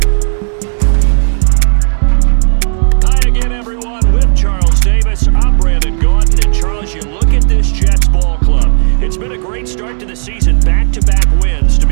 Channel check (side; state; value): left; silent; digital silence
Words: Hi again, everyone. With Charles Davis, I'm Brandon Gordon. And Charles, you look at this Jets ball club. It's been a great start to the season, back-to-back wins to